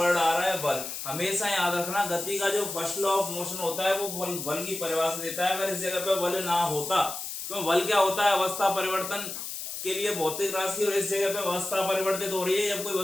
आ रहा है बल। हमेशा याद रखना, गति का जो फर्स्ट लॉ ऑफ मोशन होता है वो बल की परिभाषा देता है। अगर इस जगह पे बल ना होता तो बल क्या होता है, अवस्था परिवर्तन के लिए भौतिक राशि, और इस जगह पे अवस्था परिवर्तित हो रही है। जब कोई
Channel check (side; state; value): left; noise; hiss, 7 dB below the sound